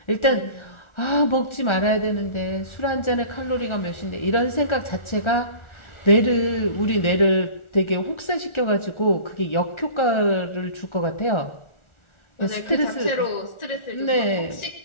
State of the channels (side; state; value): right; late; 1.4 ms